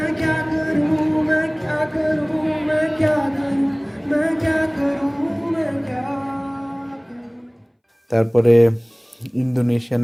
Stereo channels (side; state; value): both; identical; correlation 1.00